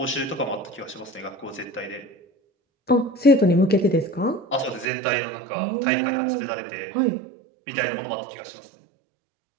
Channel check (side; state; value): left; drops out; at 4.9 s